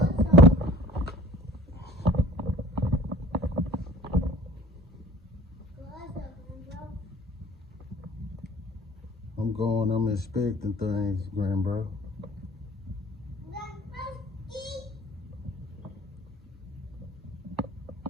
I'm inspecting things, grandbro.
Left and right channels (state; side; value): normal; both; correlation 0.47